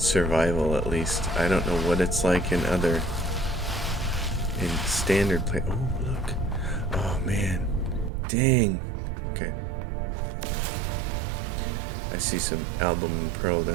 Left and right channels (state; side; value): drops out; left; at 8.1 s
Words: at least. I don't know what it's like in standard play. Oh, look. Oh, man. Dang. Okay. I see some album and pearl